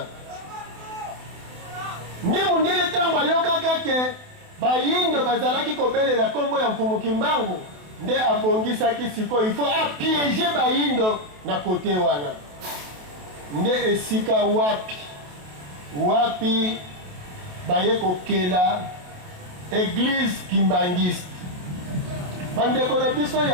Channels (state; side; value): late; left; 28 ms